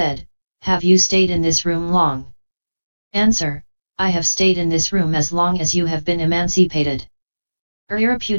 "Have you stayed in this room long?" Answer, "I have stayed in this room as long as you have been emancipated."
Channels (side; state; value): both; inverted; correlation -1.00